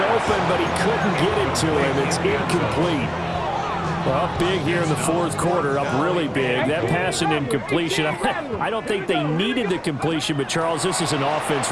but he couldn't get it to him. It's incomplete. Well, up big here in the 4th quarter, up really big. That pass and incompletion, I don't think they needed the completion, but Charles, this is an offense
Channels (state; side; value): identical; both; correlation 1.00